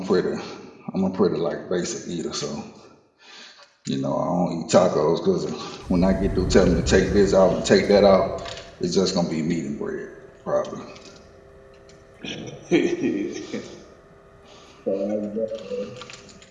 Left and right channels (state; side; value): identical; both; correlation 1.00